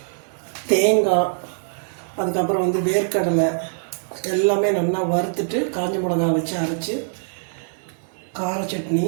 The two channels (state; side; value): silent; left; digital silence